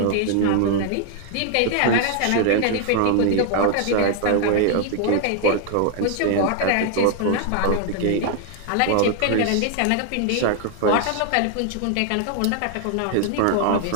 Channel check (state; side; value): different; both; correlation 0.00